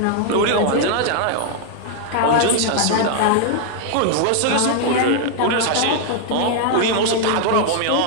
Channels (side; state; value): both; different; correlation 0.00